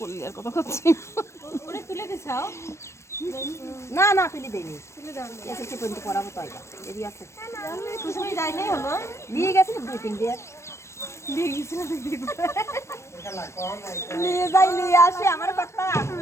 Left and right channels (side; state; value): right; late; 0.13 ms